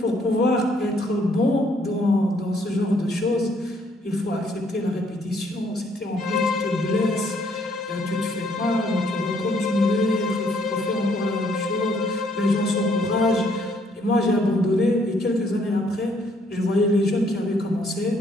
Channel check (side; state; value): both; normal; correlation 0.67